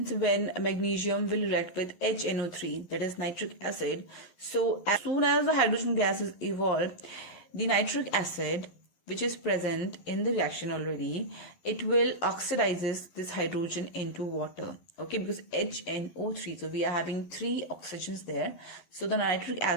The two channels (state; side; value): late; right; 11 ms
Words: when magnesium will react with HNO3, that is nitric acid? So as soon as the hydrogen gas is evolved, the nitric acid which is present in the reaction already, it will oxidizes this hydrogen into water. Okay, because HNO3, so we are having 3 oxygens there. So the nitric